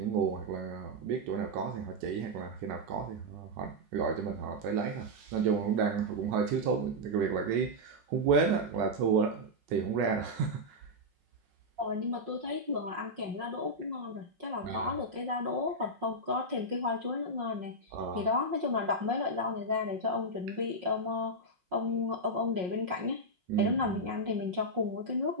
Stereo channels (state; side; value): late; left; 5.5 ms